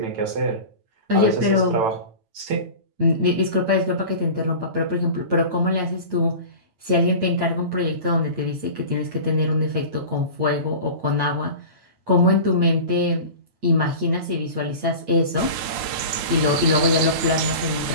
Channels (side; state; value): left; late; 9.4 ms